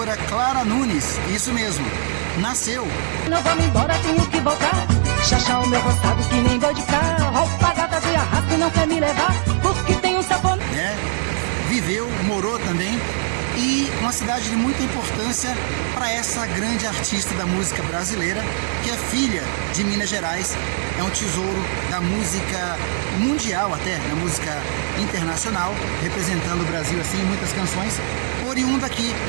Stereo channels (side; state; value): left; silent; digital silence